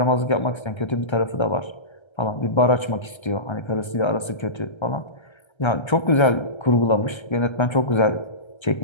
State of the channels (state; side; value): late; right; 1.3 ms